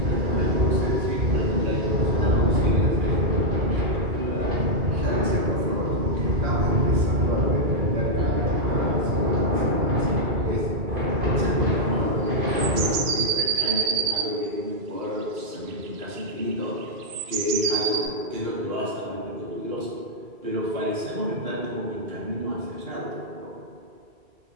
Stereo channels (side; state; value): left; late; 2.3 ms